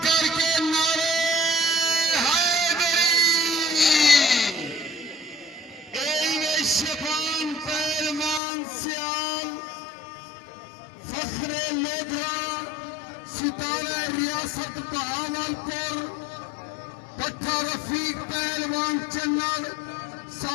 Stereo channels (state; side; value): drops out; right; at 8.4 s